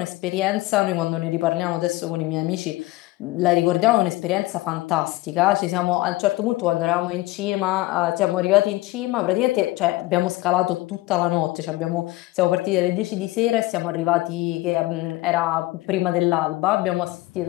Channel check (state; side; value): quieter; right; 19.3 dB